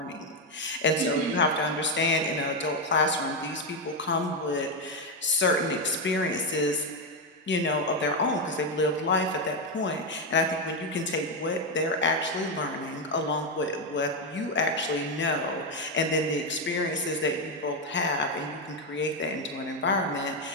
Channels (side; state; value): both; normal; correlation 0.07